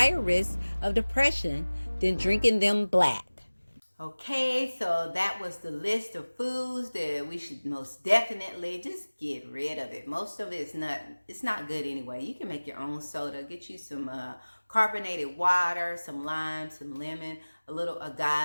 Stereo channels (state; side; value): inverted; both; correlation -1.00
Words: risk of depression than drinking them black. Okay, so that was the list of foods that we should most definitely just get rid of it. Most of it's not good anyway. You can make your own soda. Get you some carbonated water, some lime, some lemon, a little